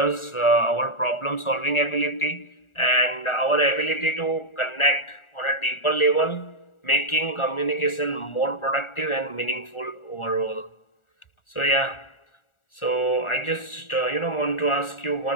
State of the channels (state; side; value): late; right; 1.4 ms